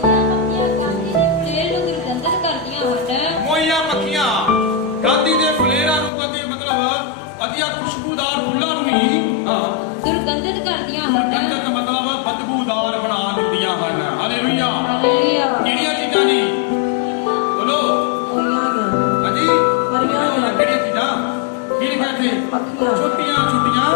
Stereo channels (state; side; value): drops out; right; at 6.1 s